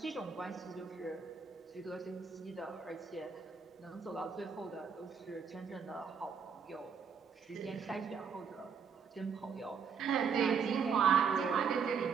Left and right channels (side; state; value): left; quieter; 6.3 dB